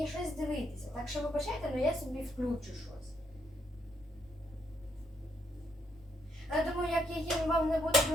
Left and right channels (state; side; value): normal; both; correlation 0.74